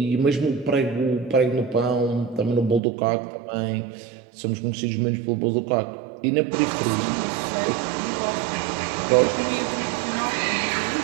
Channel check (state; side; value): drops out; left; at 2.8 s